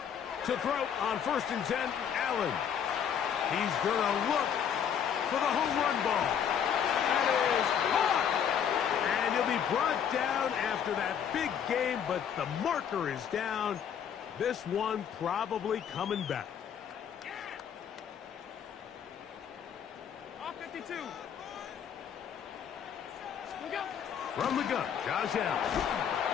To throw on 1st and 10, Allen. He's going to look for the home run ball. That is caught. And he'll be brought down after that big game, but the marker is down. This one probably coming back. Off 52. We go. From the gun, Josh Allen.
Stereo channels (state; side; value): quieter; right; 8.3 dB